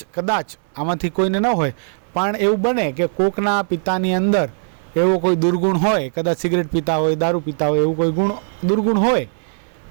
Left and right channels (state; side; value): silent; left; digital silence